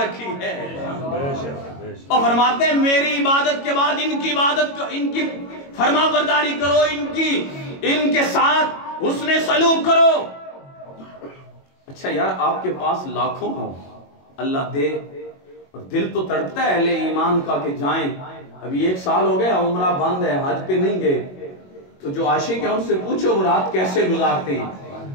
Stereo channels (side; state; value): right; late; 22 ms